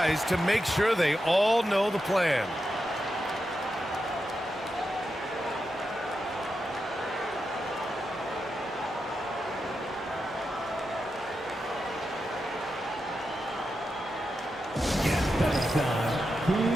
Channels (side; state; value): both; normal; correlation 0.88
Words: to make sure they all know the plan. Here